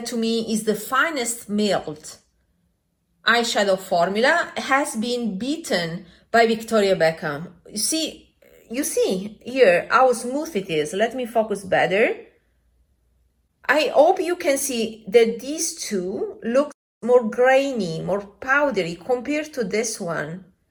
to me is the finest milled eyeshadow formula, has been beaten by Victoria Beckham. You see here how smooth it is. Let me focus better. I hope you can see that these two look more grainy, more powdery compared to this one.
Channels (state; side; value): identical; both; correlation 1.00